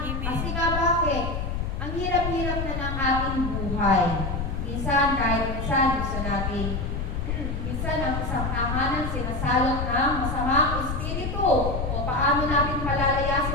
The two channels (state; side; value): noise; left; rumble, 3 dB below the sound